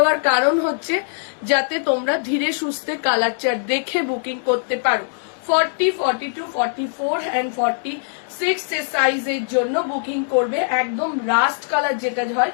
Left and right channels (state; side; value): silent; right; digital silence